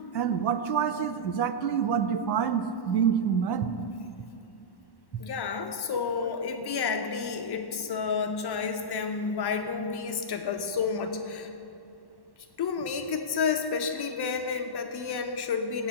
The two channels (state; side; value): late; right; 1.1 ms